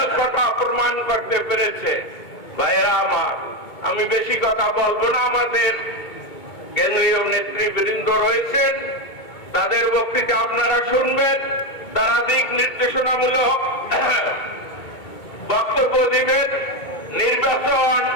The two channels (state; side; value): late; right; 2.2 ms